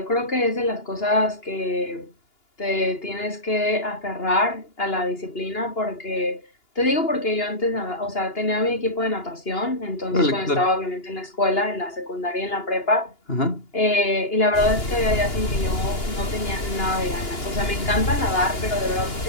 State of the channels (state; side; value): late; right; 2.9 ms